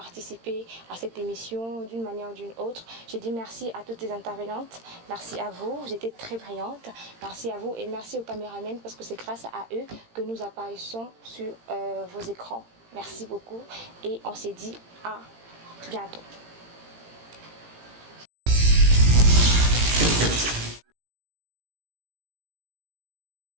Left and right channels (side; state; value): left; late; 18 ms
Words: à cette émission d'une manière ou d'une autre. Je dis merci à toutes les intervenantes, merci à vous, vous étiez très brillantes, merci à vous et merci aux caméramans parce que c'est grâce à eux que nous apparaissons sur vos écrans. Merci beaucoup et on s'est dit à bientôt.